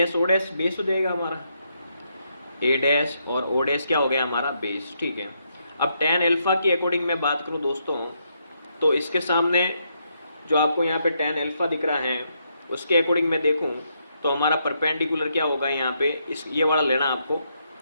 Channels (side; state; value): both; inverted; correlation -0.77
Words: o dash base हो जाएगा हमारा, a डैश और o डैश क्या हो गया हमारा बेस, ठीक है। अब tan अल्फा की अकॉर्डिंग मैं बात करूं दोस्तों, तो इसके सामने जो आपको यहाँ पे tan अल्फा दिख रहा है उसके अकॉर्डिंग मैं देखूं तो हमारा परपेंडिकुलर क्या होगा यहाँ पे, इस ये वाला लेना आपको।